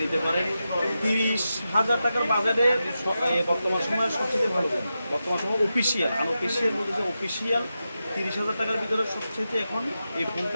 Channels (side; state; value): both; inverted; correlation -0.90